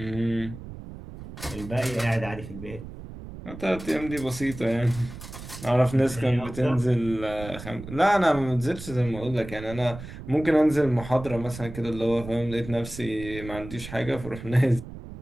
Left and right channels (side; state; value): right; noise; rumble, 13 dB below the sound